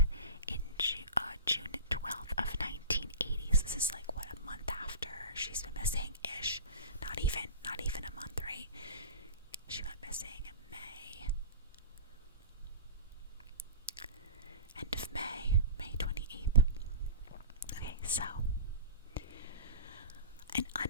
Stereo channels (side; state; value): both; inverted; correlation -0.32